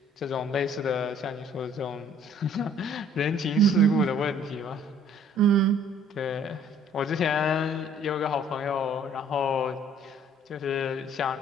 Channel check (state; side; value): normal; both; correlation 0.58